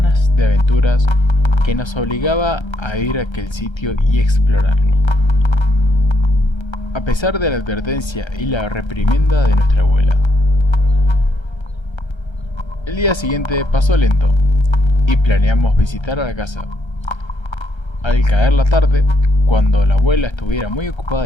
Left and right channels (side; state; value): right; late; 1.3 ms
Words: de aventuras que nos obligaba a ir a aquel sitio y explorarlo. A pesar de la advertencia y la reprimenda de nuestra abuela. El día siguiente pasó lento y planeamos visitar a la casa. Al caer la tarde, cuando la abuela estuviera muy ocupada